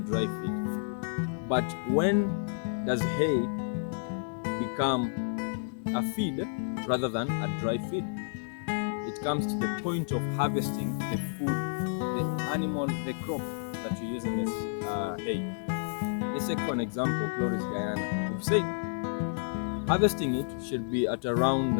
feed, but when does hay become a feed rather than a dry feed? It comes to the point of harvesting the food, the animal, the crop that you're using as hay. Let's take for an example, Chloris Guyana. We've said harvesting it should be at around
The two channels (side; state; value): right; silent; digital silence